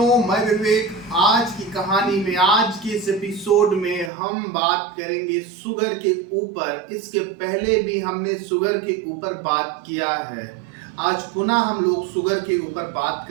मैं विवेक। आज की कहानी में, आज के इस एपिसोड में हम बात करेंगे शुगर के ऊपर। इसके पहले भी हमने शुगर के ऊपर बात किया है। आज पुनः हम लोग शुगर के ऊपर बात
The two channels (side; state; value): left; drops out; at 4.1 s